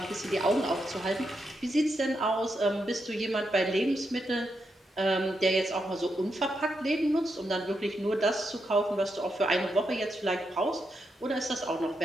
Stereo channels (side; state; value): both; normal; correlation 0.83